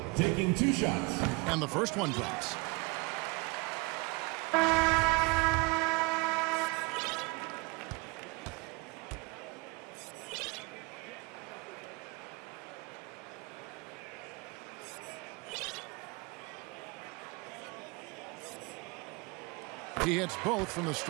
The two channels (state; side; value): quieter; left; 27.2 dB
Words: Taking 2 shots. And the first one drops. He hits both from the